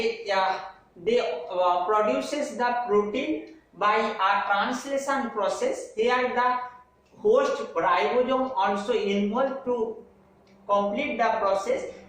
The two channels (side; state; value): both; identical; correlation 1.00